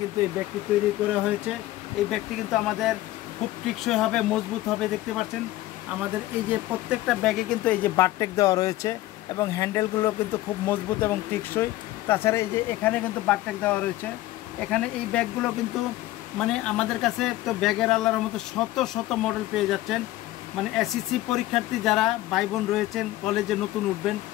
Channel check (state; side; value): quieter; right; 16.5 dB